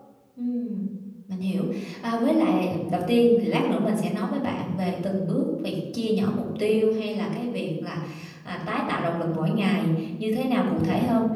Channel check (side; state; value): both; identical; correlation 1.00